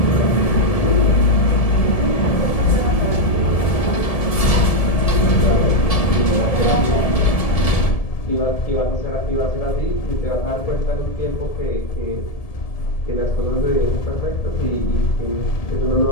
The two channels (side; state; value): right; late; 1.7 ms